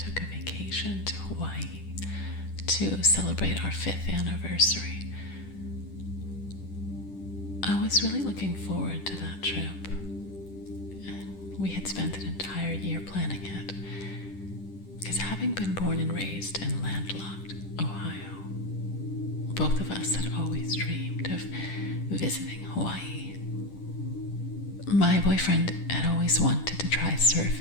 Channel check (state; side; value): late; right; 10 ms